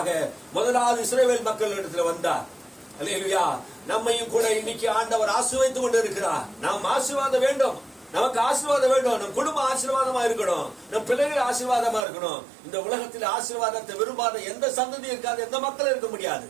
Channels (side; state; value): left; drops out; at 12.1 s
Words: முதலாவது இஸ்ரவேல் மக்களிடத்தில் வந்தார். அல்லேலூயா. நம்மையும் கூட இன்னைக்கு ஆண்டவர் ஆசீர்வதித்துக் கொண்டு இருக்கிறார். நாம் ஆசீர்வாதம் வேண்டும். நமக்கு ஆசீர்வாதம் வேண்டும். நம் குடும்பம் ஆசீர்வாதமா இருக்கணும். நம் பிள்ளைகள் ஆசீர்வாதமா இருக்கணும். இந்த உலகத்தில் ஆசீர்வாதத்தை விரும்பாத எந்த சந்ததி இருக்காது, எந்த மக்களும் இருக்க முடியாது.